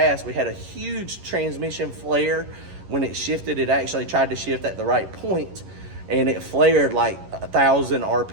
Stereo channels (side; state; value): left; late; 11 ms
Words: we had a huge transmission flare. When it shifted, it actually tried to shift at the right point, and it flared like 1,000